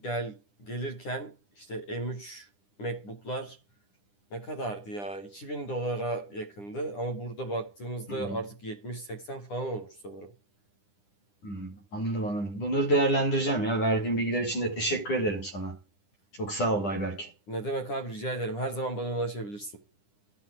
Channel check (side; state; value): right; late; 9.9 ms